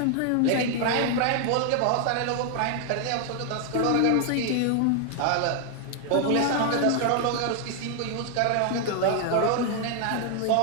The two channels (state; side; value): different; both; correlation 0.00